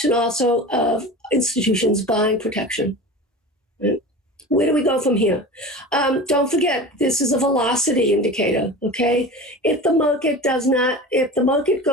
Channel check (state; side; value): normal; both; correlation 0.33